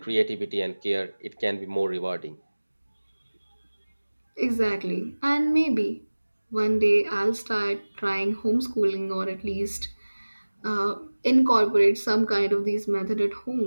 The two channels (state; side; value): inverted; both; correlation -1.00